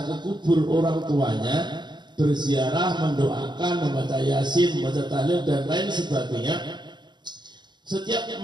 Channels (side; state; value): left; late; 0.21 ms